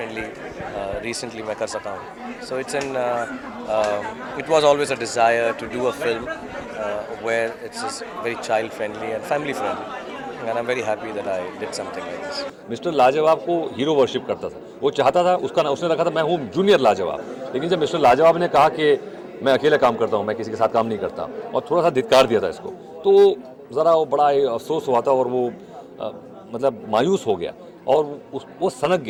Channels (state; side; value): identical; both; correlation 1.00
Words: रिसेंटली मैं कर सका हूँ। So it was always a desire to do a film where it's very child friendly and family friendly, and I'm very happy that I did something like this. Mister लाजवाब को hero worship करता था। वो चाहता था, उसका नाम उसने रखा था मैं हूँ जूनियर लाजवाब। लेकिन जब मिस्टर लाजवाब ने कहा कि मैं अकेले काम करता हूँ, मैं किसी के साथ काम नहीं करता, और थोड़ा सा धिक्कार दिया था इसको, तो ज़रा वो बड़ा अफसोस हुआ था और वो मतलब मायूस हो गया और वो सनक